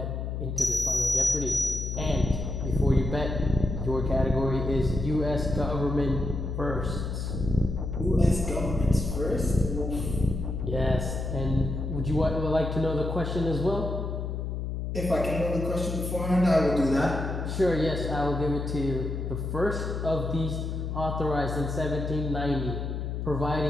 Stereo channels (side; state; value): left; noise; hum, 3 dB below the sound